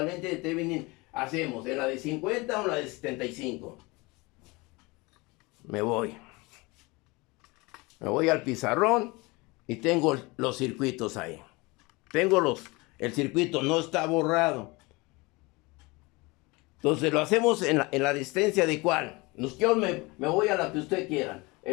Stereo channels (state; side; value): quieter; right; 24.6 dB